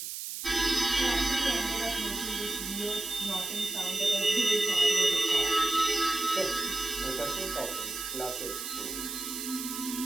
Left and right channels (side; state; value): right; noise; hiss, 6 dB below the sound